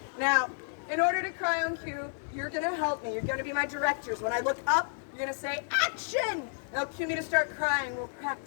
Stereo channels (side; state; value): right; silent; digital silence